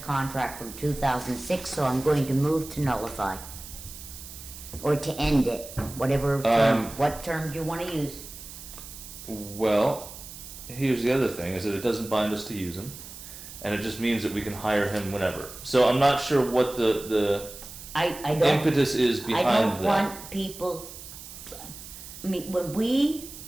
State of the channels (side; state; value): right; noise; hiss, 14 dB below the sound